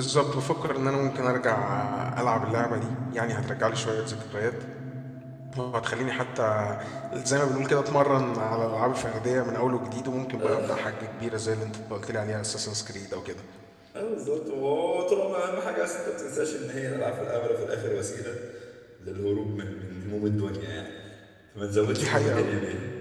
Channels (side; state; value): both; identical; correlation 1.00